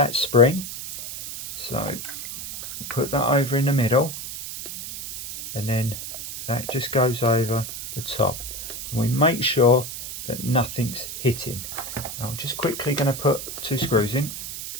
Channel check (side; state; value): right; noise; hiss, 8 dB below the sound